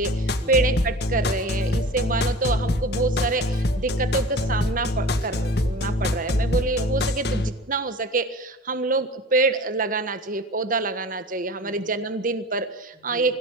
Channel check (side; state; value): both; normal; correlation 0.38